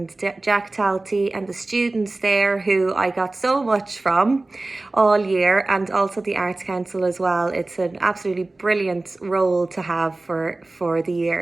Jack Talty and the students there who I got so much from all year, and also the Arts Council as well. It's an absolutely brilliant role to have for the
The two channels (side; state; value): left; quieter; 3.0 dB